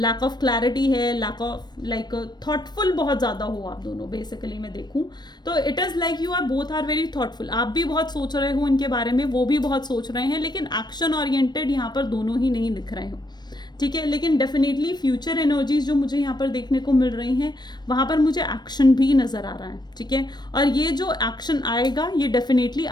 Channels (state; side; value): late; right; 0.21 ms